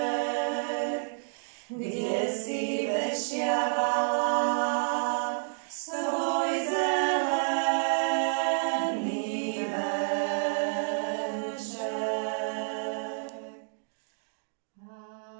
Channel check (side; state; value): left; silent; digital silence